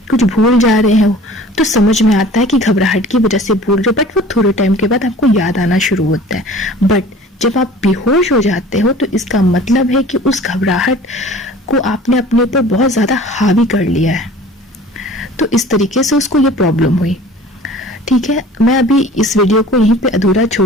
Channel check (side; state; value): both; normal; correlation 0.45